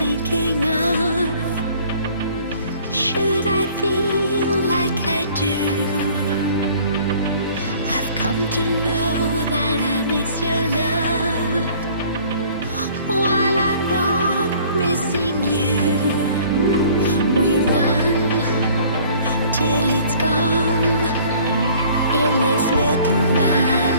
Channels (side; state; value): both; inverted; correlation -0.53